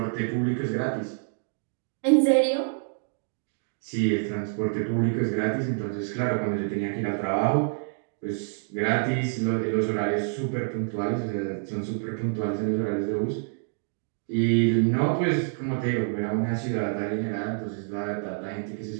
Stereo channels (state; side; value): silent; left; digital silence